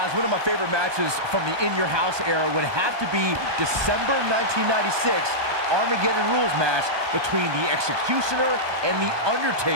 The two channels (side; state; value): left; late; 1.2 ms